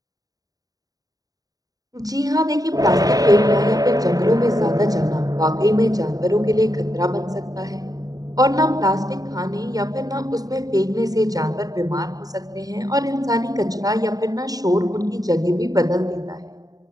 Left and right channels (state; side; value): late; left; 0.18 ms